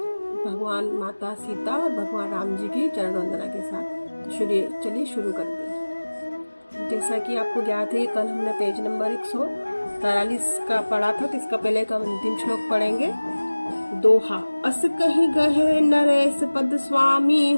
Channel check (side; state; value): both; inverted; correlation -1.00